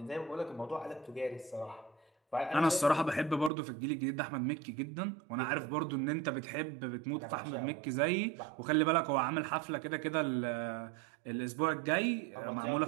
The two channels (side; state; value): left; drops out; at 3.5 s